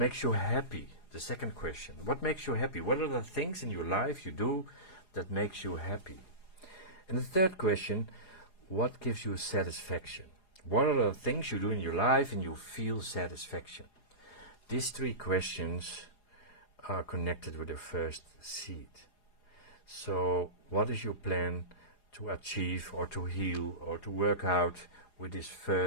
you happy? The second question. What makes you happy? What are the things in your life you do that makes you happy? And the third question, what gives you satisfaction? What are the things you do in your life and you feel satisfaction? These 3 questions are connected with the first seed. So what is your plan to achieve or to heal or to work out with this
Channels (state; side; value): late; right; 4.8 ms